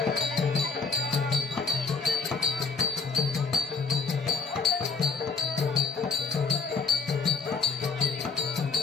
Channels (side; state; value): right; quieter; 4.7 dB